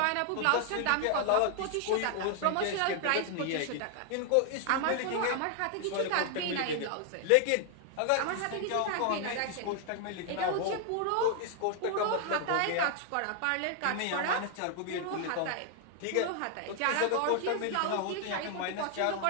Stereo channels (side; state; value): both; different; correlation 0.00